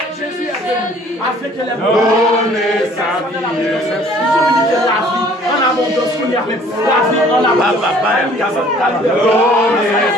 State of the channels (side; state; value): both; normal; correlation 0.55